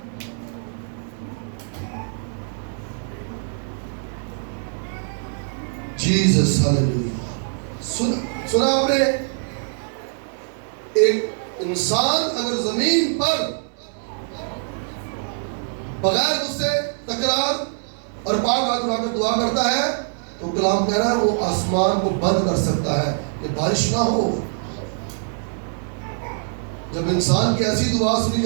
جیزس ہاللیلویا۔ سنا آپ نے؟ ایک انسان اگر زمین پر بغیر اس سے تکرار اور پاک ہاتھ اٹھا کر دعا کرتا ہے تو کلام کہہ رہا ہے وہ آسمان کو بند کر سکتا ہے کہ بارش نہ ہو۔ جب انسان کی ایسی دعا سنی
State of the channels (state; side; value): silent; left; digital silence